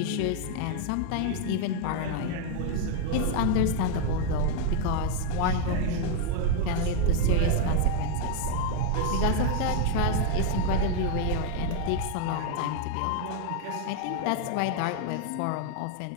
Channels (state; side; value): different; both; correlation 0.00